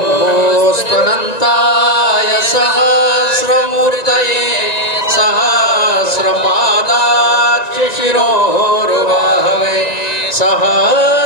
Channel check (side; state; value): right; late; 1.9 ms